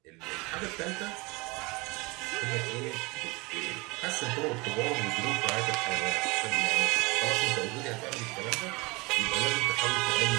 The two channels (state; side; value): quieter; left; 25.4 dB